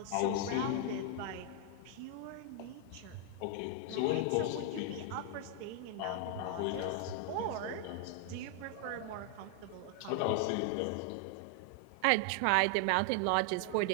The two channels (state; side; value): different; both; correlation 0.00